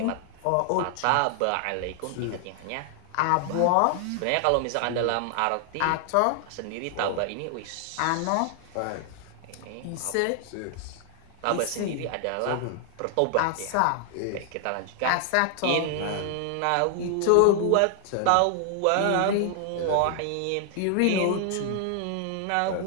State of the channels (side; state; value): both; different; correlation 0.00